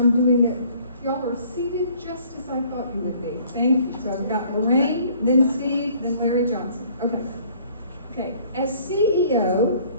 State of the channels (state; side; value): inverted; both; correlation -0.57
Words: doing it, y'all are seated just as I thought you would be. Thank you. So I've got Lorraine, then Steve, then Larry Johnson. Okay. Okay. As CEO,